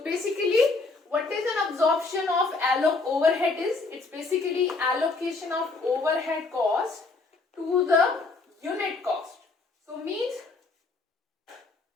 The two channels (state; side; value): quieter; right; 3.7 dB